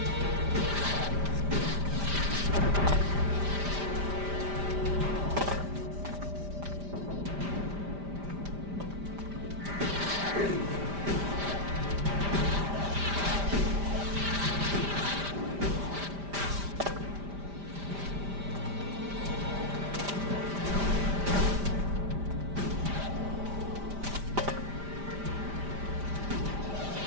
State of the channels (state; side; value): late; left; 5.0 ms